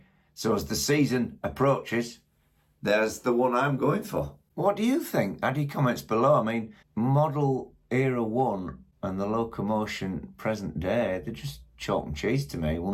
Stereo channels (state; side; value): identical; both; correlation 1.00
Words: So as the season approaches, there's the one I'm going for. What do you think? Add your comments below. I mean, model Era 1 and the Locomotion present day, they're just chalk and cheese to me.